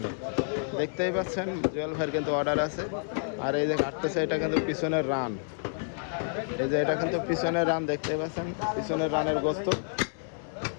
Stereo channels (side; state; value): right; silent; digital silence